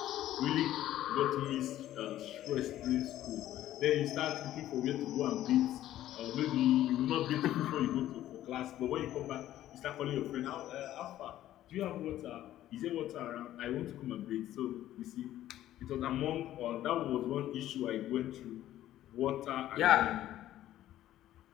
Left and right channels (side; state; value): right; quieter; 13.2 dB